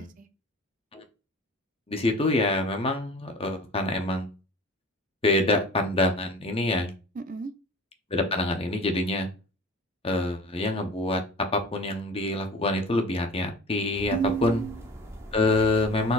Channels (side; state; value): both; normal; correlation 0.40